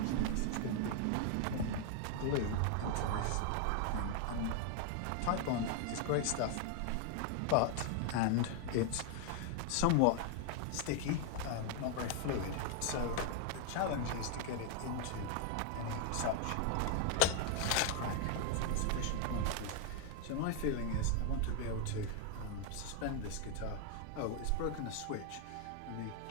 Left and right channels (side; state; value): both; different; correlation 0.00